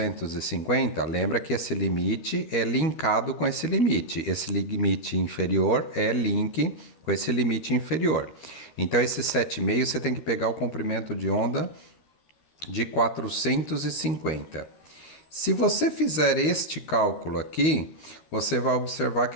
lembra que esse limite é linkado com esse limite.Esse limite inferior é link com esse limite inferior. Então, esse 7,5 você tem que pegar o comprimento de onda de 450. Se você fizer este cálculo aqui, você vai observar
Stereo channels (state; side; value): late; right; 13 ms